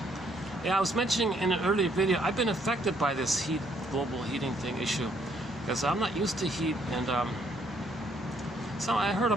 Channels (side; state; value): both; normal; correlation 0.68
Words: Yeah, I was mentioning in an earlier video, I've been affected by this global heating thing issue, because I'm not used to heat, and So I heard a